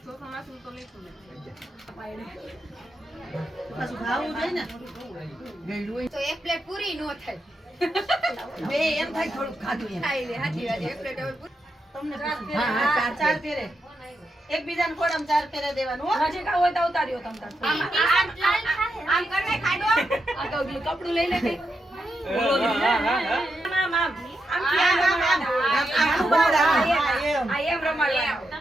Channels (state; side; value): normal; both; correlation 0.85